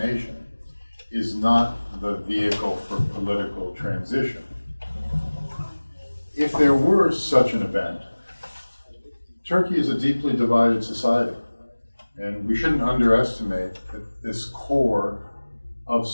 is not the vehicle for political transition. If there were such an event, Turkey is a deeply divided society, and we shouldn't underestimate that this core of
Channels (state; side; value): inverted; both; correlation -1.00